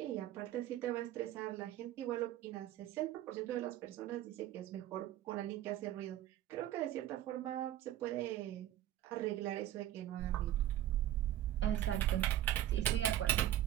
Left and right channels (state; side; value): quieter; left; 12.7 dB